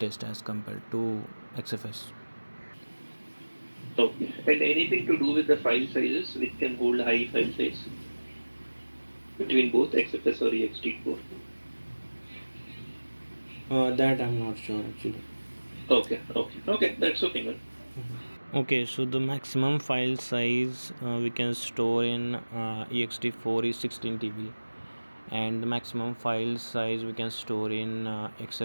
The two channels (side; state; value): both; inverted; correlation -1.00